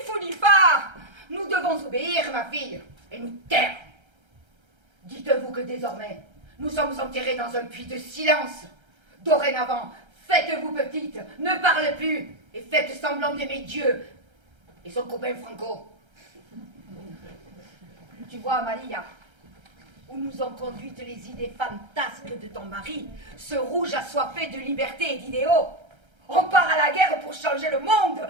fou ni phare, nous devons obéir, ma fille, et nous taire. Dites-vous que désormais, nous sommes enterrés dans un puits de silence. Dorénavant, faites-vous petite, ne parlez plus, et faites semblant d'aimer Dieu et son copain Franco. Tu vois, Amalia, où nous ont conduites les idées fantasques de ton mari, ce rouge assoiffé de liberté et d'idéaux. On part à la guerre pour changer le monde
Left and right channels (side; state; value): left; late; 1.3 ms